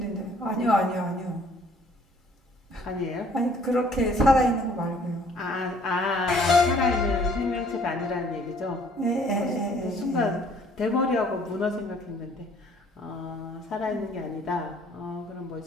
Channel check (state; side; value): normal; both; correlation 0.58